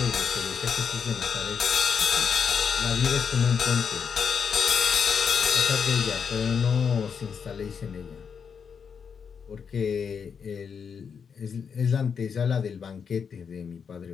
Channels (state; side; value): quieter; right; 6.6 dB